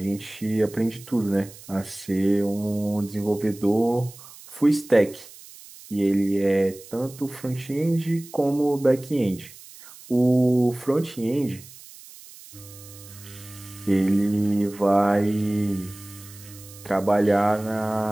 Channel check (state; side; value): noise; right; hiss, 19 dB below the sound